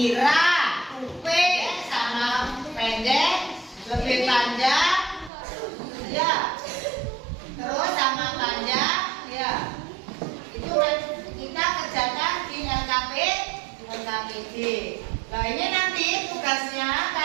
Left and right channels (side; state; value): left; drops out; at 5.3 s